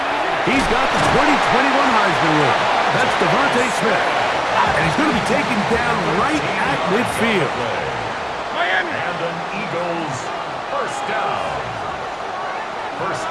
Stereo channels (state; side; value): identical; both; correlation 1.00